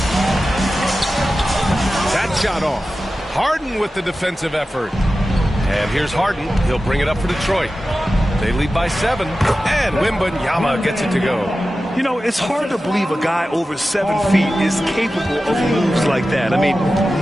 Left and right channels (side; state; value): both; normal; correlation 0.94